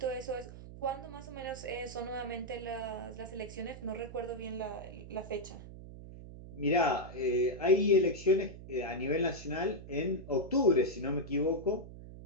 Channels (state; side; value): noise; right; hum, 14 dB below the sound